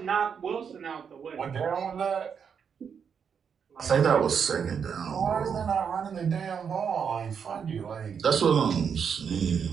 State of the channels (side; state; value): left; quieter; 7.0 dB